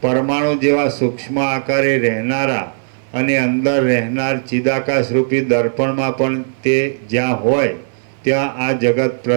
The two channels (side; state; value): left; silent; 62 dB below the other